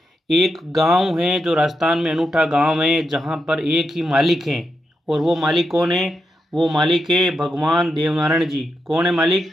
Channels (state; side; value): normal; both; correlation 0.85